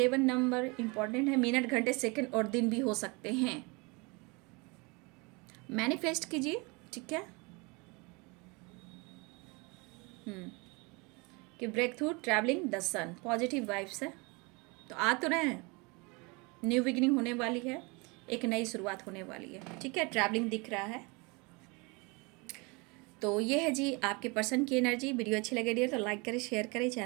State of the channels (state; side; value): quieter; left; 28.2 dB